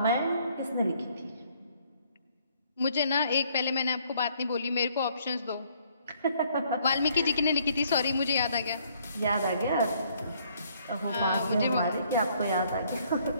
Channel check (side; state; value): both; inverted; correlation -0.65